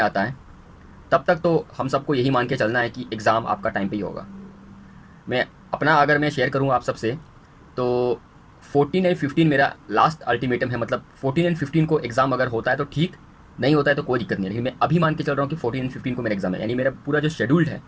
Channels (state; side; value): identical; both; correlation 1.00